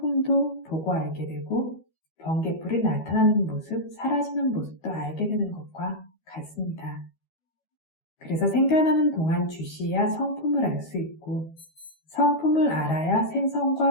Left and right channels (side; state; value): right; late; 12 ms